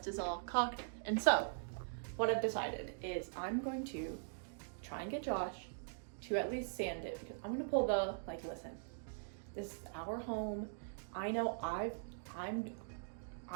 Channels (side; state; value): left; silent; digital silence